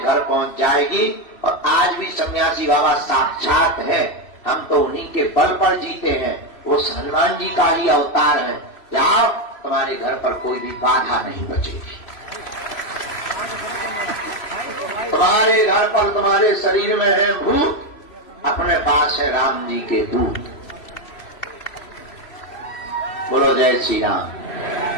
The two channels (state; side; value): late; right; 3.0 ms